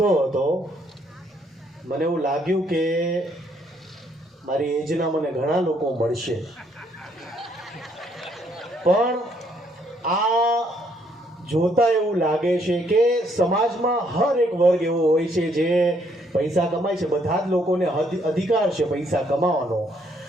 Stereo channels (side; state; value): both; normal; correlation 0.69